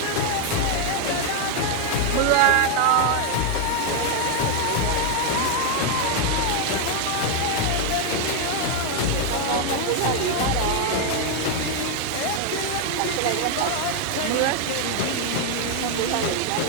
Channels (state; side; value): different; both; correlation 0.01